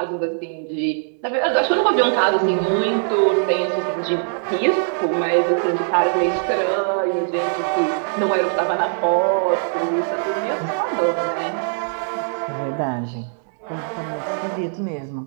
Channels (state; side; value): silent; left; 65 dB below the other